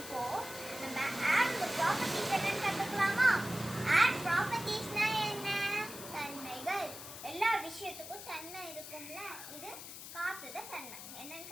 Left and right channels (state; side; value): noise; left; hiss, 11 dB below the sound